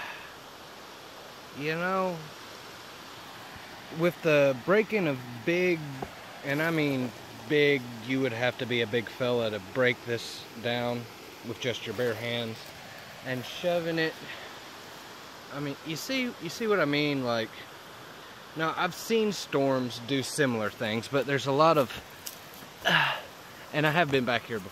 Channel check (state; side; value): identical; both; correlation 1.00